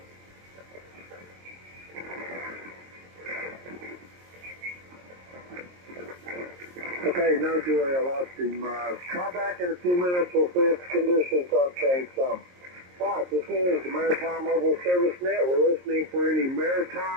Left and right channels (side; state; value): left; late; 22 ms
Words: Okay, no Joy, I lost him. Try back in a few minutes, we'll see if the conditions don't change some. Alright, this is the Maritime Mobile Service Net. We're listening for any